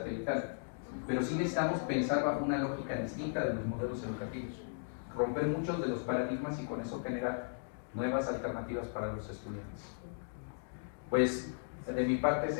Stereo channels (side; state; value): right; silent; digital silence